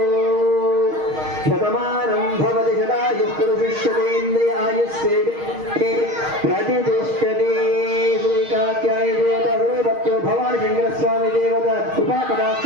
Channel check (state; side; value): late; left; 6.4 ms